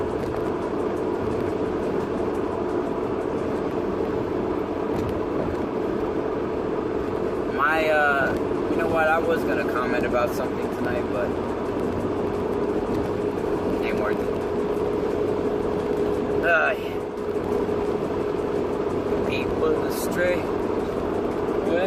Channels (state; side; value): identical; both; correlation 1.00